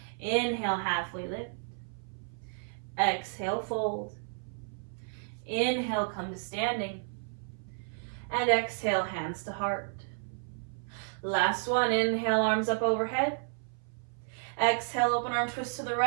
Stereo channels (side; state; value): left; silent; 56 dB below the other